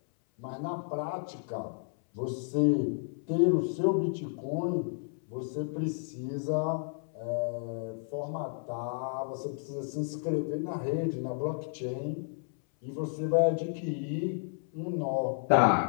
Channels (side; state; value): right; silent; 57 dB below the other